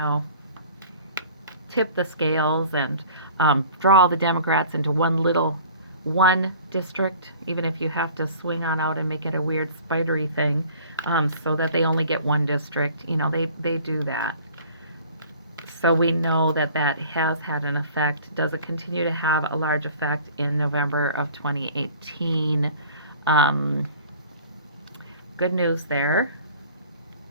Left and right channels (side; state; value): both; inverted; correlation -0.48